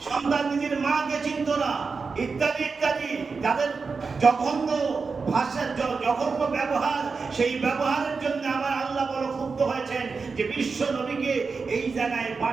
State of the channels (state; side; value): quieter; left; 4.8 dB